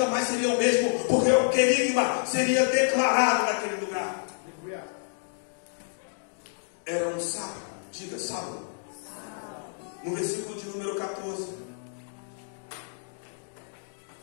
mais seria o mesmo, porque o querigma seria declarado naquele lugar. Era um sábado. Diga, sábado. No versículo de número 14,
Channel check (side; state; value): right; silent; digital silence